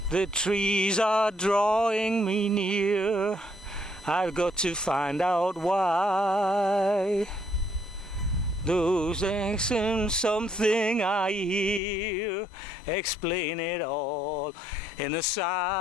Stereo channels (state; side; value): drops out; right; at 11.8 s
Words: The trees are drawing me near. I've got to find out why. Those accents, something I hear, explain it all in a